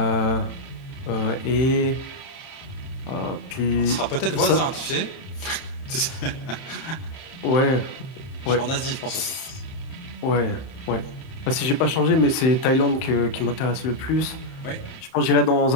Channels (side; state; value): right; late; 30 ms